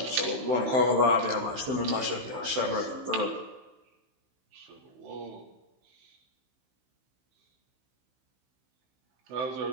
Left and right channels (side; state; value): left; late; 16 ms